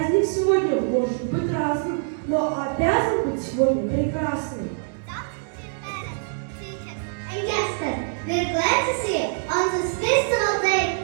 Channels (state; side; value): silent; left; digital silence